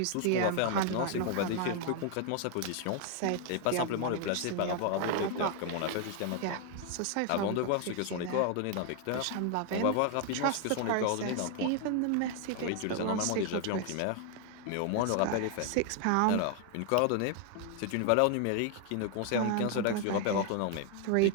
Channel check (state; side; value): different; both; correlation 0.00